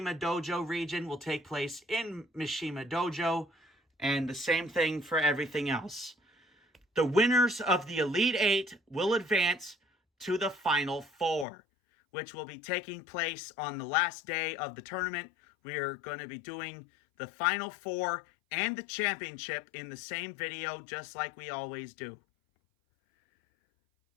Dojo region will take place in Mishima Dojo, and the same thing for everything else. The winners of the Elite 8 will advance to the Final 4, which will be taking place on the last day of the tournament. We're going to be doing the Final 4 and the championship in the same video, just like we always do.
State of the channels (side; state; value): right; drops out; at 11.5 s